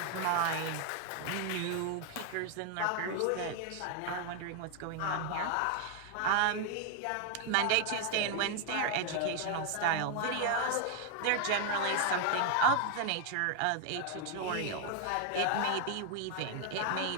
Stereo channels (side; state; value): both; different; correlation 0.00